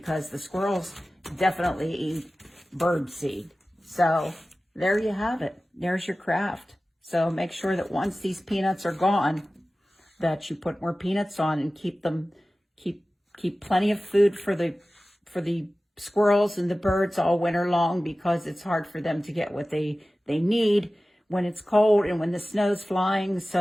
the squirrels definitely eat bird seed. So there you have it. There's your craft. So make sure that once these peanuts are gone, that you put more peanuts on and keep plenty of food for the squirrels and the birds all winter long, because it's hard for them to get what they need when it's cold and when the snow's flying.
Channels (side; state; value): both; normal; correlation 0.96